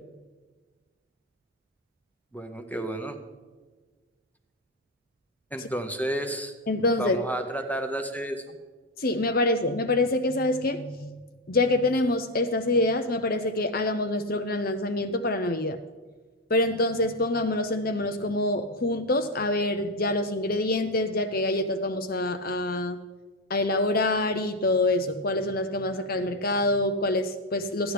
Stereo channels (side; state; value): both; normal; correlation 0.08